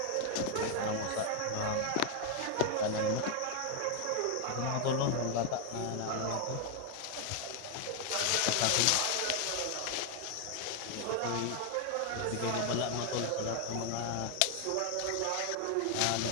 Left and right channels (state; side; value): different; both; correlation 0.00